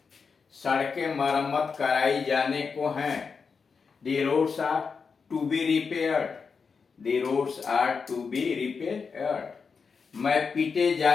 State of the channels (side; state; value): right; quieter; 5.4 dB